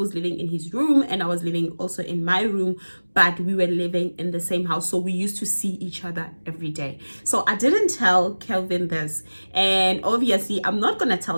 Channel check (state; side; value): inverted; both; correlation -1.00